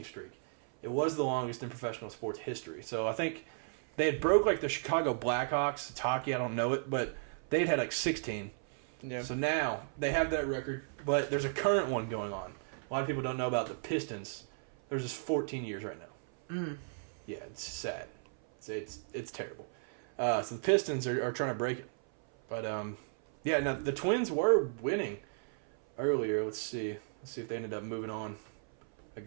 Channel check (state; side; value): silent; left; 55 dB below the other